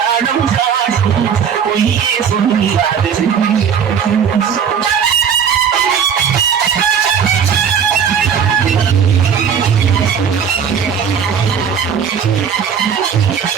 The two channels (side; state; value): left; quieter; 7.4 dB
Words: காட்டும் பொய்யே சொல்லாதது.